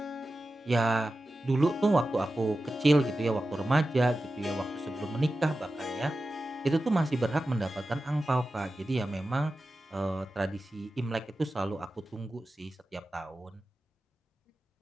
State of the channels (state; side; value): normal; both; correlation 0.93